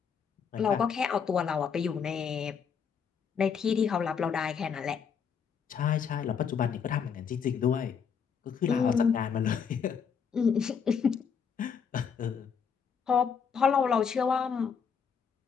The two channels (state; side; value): quieter; right; 6.7 dB